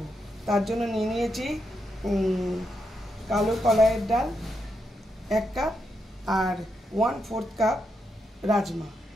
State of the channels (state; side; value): normal; both; correlation 0.82